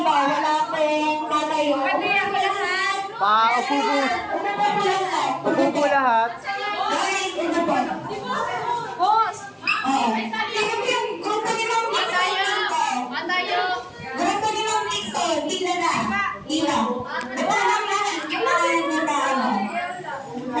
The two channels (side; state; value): both; identical; correlation 1.00